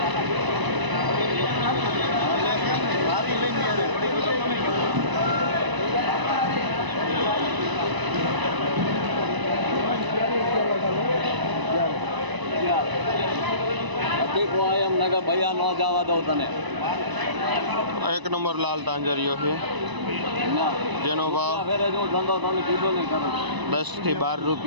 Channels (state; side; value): late; left; 1.0 ms